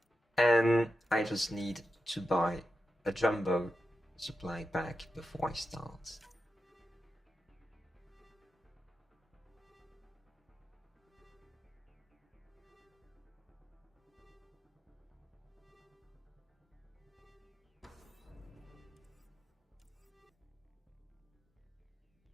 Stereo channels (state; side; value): normal; both; correlation 0.89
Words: And I just need to buy a jumbo supply pack before I start.